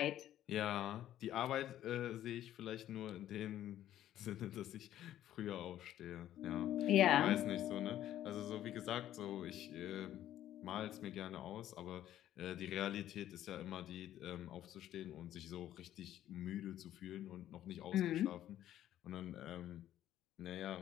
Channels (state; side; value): quieter; right; 12.2 dB